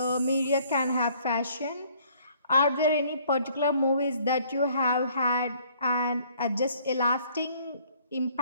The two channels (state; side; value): inverted; both; correlation -0.60